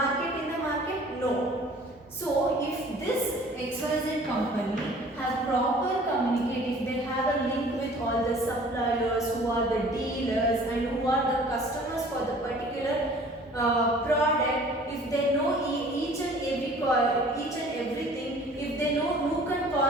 in the market? No. So if this XYZ company have proper communicate, if they have a link with all the suppliers, who are the dealers and who are the customers for the particular product, if they know each and everything, if they know nook and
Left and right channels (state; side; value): normal; both; correlation 0.50